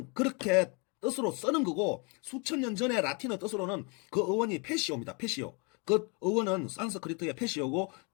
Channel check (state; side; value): quieter; right; 32.8 dB